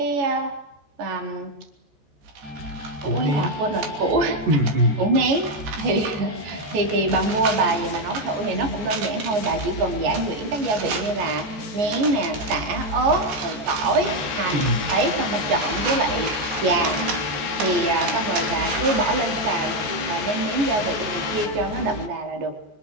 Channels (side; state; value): left; late; 14 ms